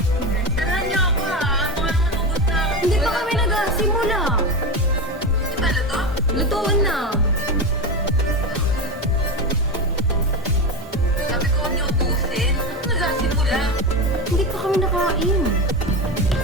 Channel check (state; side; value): normal; both; correlation 0.20